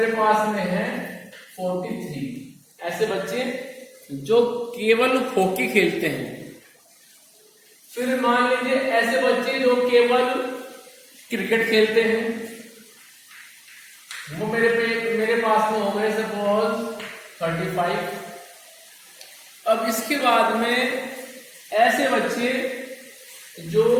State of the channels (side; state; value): both; identical; correlation 1.00